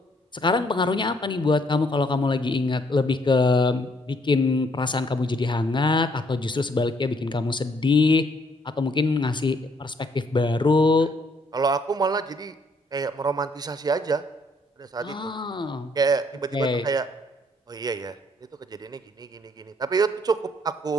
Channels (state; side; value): normal; both; correlation 0.67